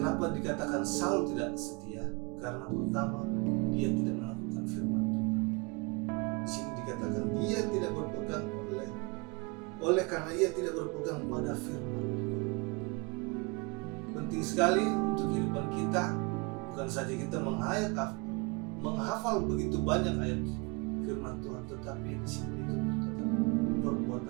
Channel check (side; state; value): left; quieter; 29.4 dB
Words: dikatakan Saul tidak setia? Karena pertama, dia tidak melakukan firman Tuhan. Di sini dikatakan dia tidak berpegang oleh karena ia tidak berpegang pada firman Tuhan. Penting sekali untuk kehidupan kita, bukan saja kita menghafal begitu banyak ayat firman Tuhan, tetapi di sini dituntut